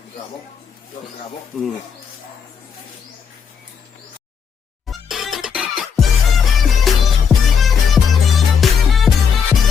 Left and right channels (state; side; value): quieter; right; 6.7 dB